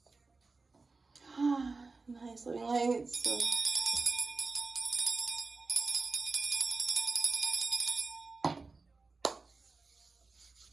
Nice living lights. So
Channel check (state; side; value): quieter; left; 3.8 dB